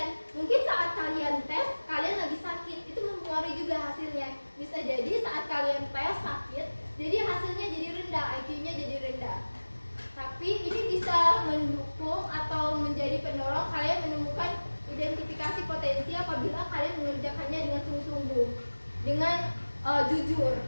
Mungkin saat kalian tes, kalian lagi sakit, itu mempengaruhi juga hasilnya. Bisa jadi saat kalian tes sakit, jadi hasilnya jadi rendah, IQ-nya jadi rendah. Tapi ini bisa mendukung atau menjadi pendorong kalian menemukan identifikasi potensi apabila kalian mengerjakannya dengan sungguh-sungguh, dengan jujur.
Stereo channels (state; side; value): inverted; both; correlation -1.00